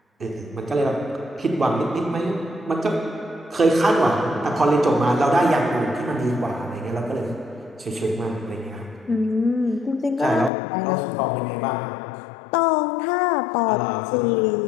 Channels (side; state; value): right; drops out; at 10.5 s